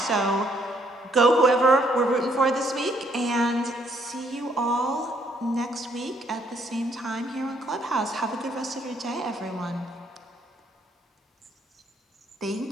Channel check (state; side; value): normal; both; correlation 0.69